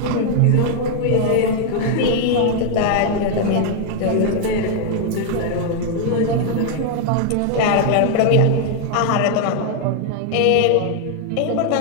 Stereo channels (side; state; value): both; different; correlation 0.00